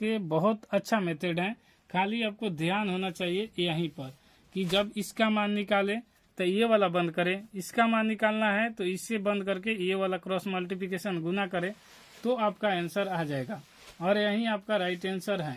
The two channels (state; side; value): identical; both; correlation 1.00